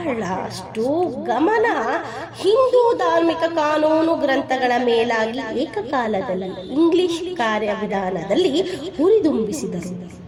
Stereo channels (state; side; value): identical; both; correlation 1.00